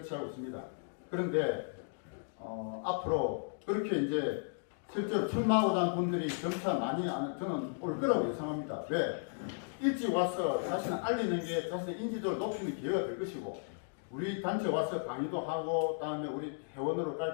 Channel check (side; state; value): right; silent; digital silence